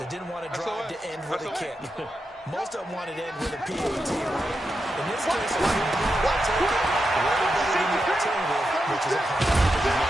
didn't want to drive to end with a kick. Most of them wanted to end with a PAT, right? In this case, if you're going to take it, way better than the alternative, which is a punt.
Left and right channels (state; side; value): normal; both; correlation 0.87